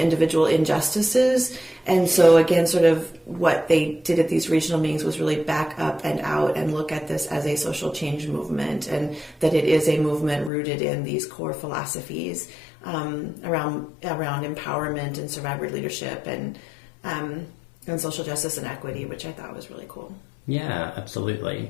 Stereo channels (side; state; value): right; drops out; at 10.5 s